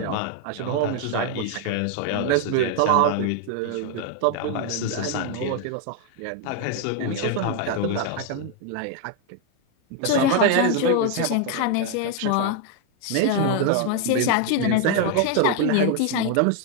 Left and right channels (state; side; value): different; both; correlation 0.01